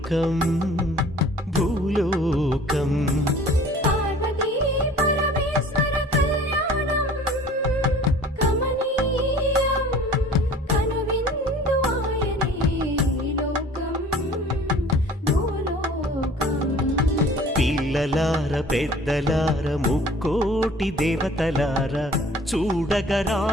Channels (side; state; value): both; normal; correlation 0.48